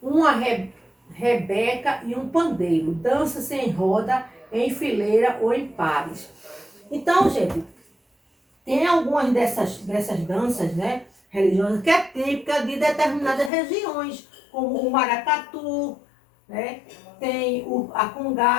rebeca e um pandeiro. Dança-se em roda, em fileira ou em pares. Então, gente, tem algumas dessas danças, né, religiosas que é típica de determinadas regiões, como o maracatu, né, tem a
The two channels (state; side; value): drops out; right; at 13.5 s